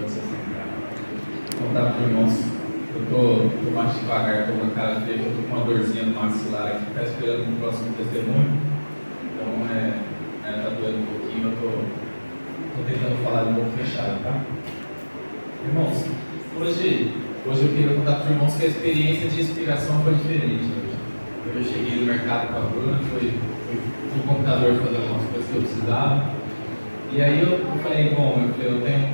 Vou contar para os irmãos. Eu tô mais devagar, estou com a cara feia, eu estou com uma dorzinha no maxilar aqui, está esperando o próximo testemunho. Então, tá doendo um pouquinho, eu tô tentando falar um pouco fechado, tá? Irmãos, hoje eu queria contar para os irmãos que a experiência de inspiração foi diferente hoje. Eu cheguei no mercado com a Bruna, fui no computador fazer algumas coisas que eu precisava. E aí eu falei, eu tenho um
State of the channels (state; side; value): inverted; both; correlation -1.00